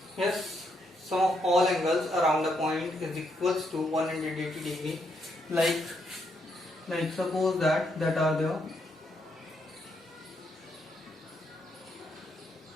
Yes, sum of all angles around the point is equals to 180 degree. Like suppose that are there.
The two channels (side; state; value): both; normal; correlation 0.76